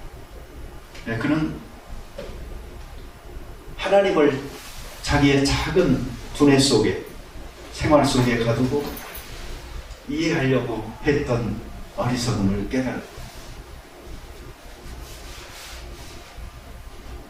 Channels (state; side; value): identical; both; correlation 1.00